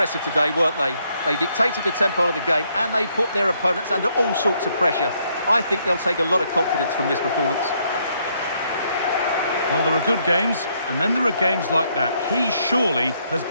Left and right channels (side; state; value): both; inverted; correlation -0.72